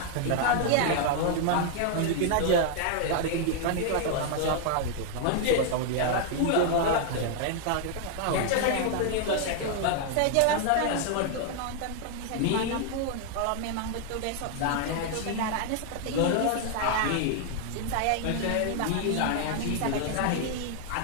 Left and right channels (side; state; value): both; different; correlation 0.00